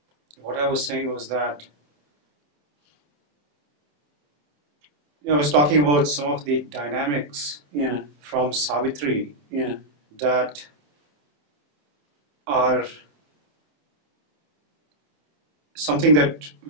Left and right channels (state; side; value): late; left; 28 ms